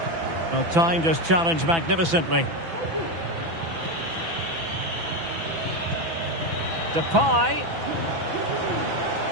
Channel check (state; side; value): late; left; 6.0 ms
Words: Well, time just challenged magnificently. Depay.